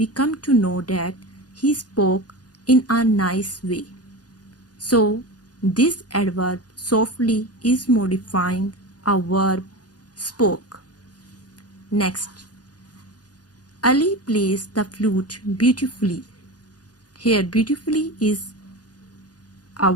come to know that he spoke in a nice way. So this adverb softly is modifying a verb spoke. Next, Ali plays the flute beautifully. Here beautifully is a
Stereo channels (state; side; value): late; right; 0.68 ms